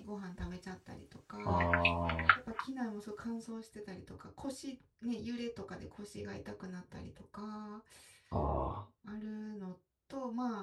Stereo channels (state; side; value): identical; both; correlation 1.00